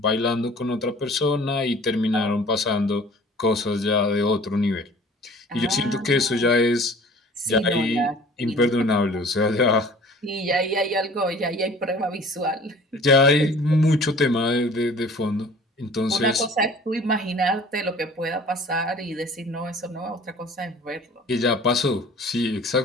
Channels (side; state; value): both; normal; correlation 0.48